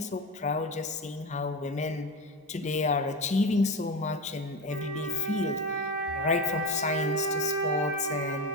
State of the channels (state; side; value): normal; both; correlation 0.20